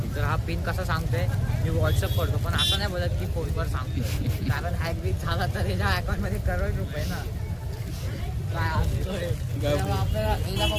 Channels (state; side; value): identical; both; correlation 1.00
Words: तर हा पिन कसा सांगतोय मी व्हॉट्सअप करतो पण असं नाही बोलत की फोनवर सांगतोय कारण हॅक बीक झाला तर याच्या अकाउंटमध्ये करोड रुपये ना काय असतोय तेव्हा आपल्याला याच्या